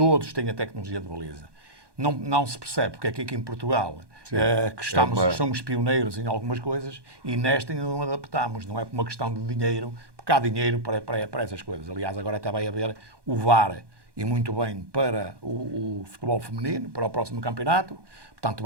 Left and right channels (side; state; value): left; late; 1.2 ms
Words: têm a tecnologia de baliza. não se percebe porque é que aqui em Portugal que somos pioneiros em algumas coisas e nesta ainda não adaptamos. Não é por uma questão de dinheiro, porque há dinheiro para essas coisas. Aliás, agora até vai haver o VAR, e muito bem, para o futebol feminino, para o próximo campeonato. Portanto,